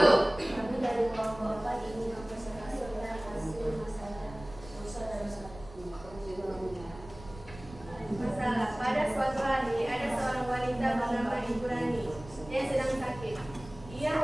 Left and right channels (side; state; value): right; noise; rumble, 17 dB below the sound